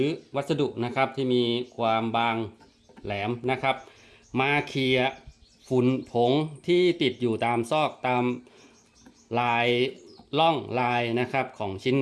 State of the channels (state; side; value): identical; both; correlation 1.00